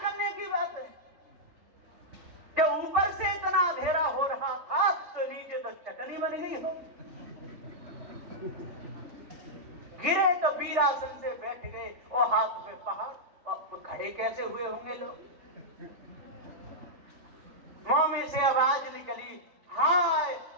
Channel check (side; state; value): left; late; 3.3 ms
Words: की बात है। जब ऊपर से इतना अंधेरा हो रहा था तो नीचे तो चटनी बन गई हो। गिरे तो वीरासन से बैठ गए और हाथ पे पहाड़, और खड़े कैसे हुए होंगे लोग? मुंह में से आवाज निकली, हाय